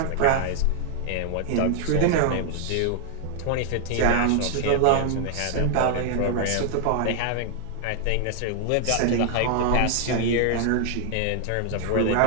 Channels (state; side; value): different; both; correlation 0.00